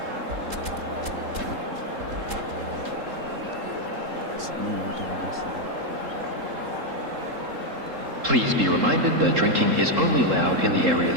Please be reminded that drinking is only allowed in the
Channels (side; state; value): left; late; 3.7 ms